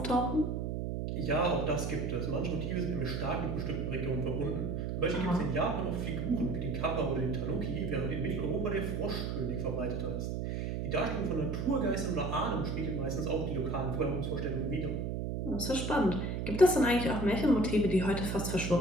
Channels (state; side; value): noise; right; hum, 2 dB below the sound